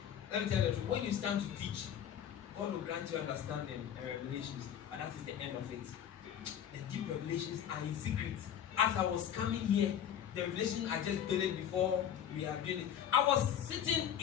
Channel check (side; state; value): right; quieter; 9.5 dB